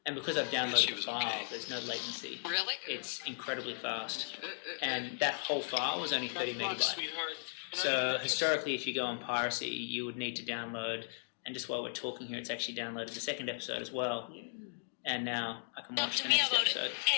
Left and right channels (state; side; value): silent; right; digital silence